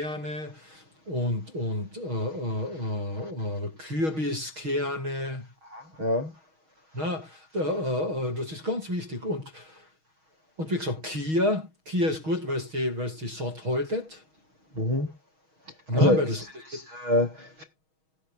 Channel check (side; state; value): left; late; 6.3 ms